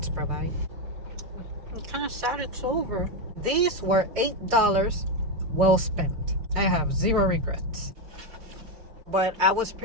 provide. I'm kind of sad it's over. These were $8. Well spent. I have 0 regrets. But I was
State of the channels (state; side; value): late; left; 4.8 ms